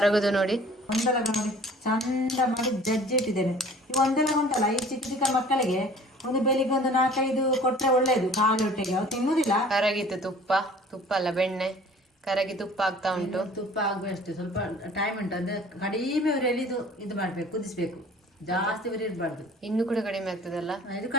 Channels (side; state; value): both; normal; correlation 0.49